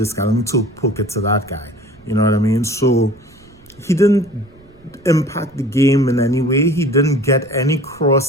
guy, let me poke it to that guy. You know what I mean? So he didn't impact the game in any way. He didn't get any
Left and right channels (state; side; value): noise; right; rumble, 27 dB below the sound